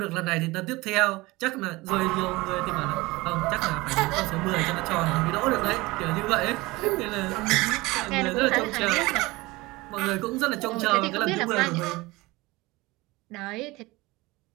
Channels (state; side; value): quieter; left; 21.6 dB